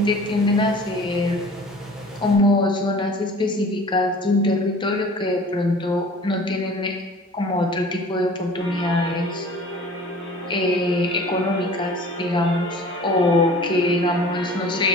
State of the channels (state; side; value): normal; both; correlation 0.45